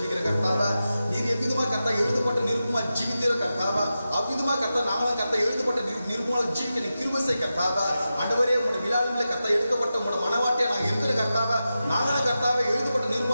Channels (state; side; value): inverted; both; correlation -0.91